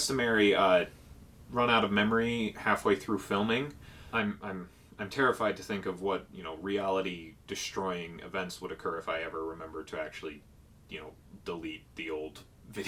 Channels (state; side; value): identical; both; correlation 1.00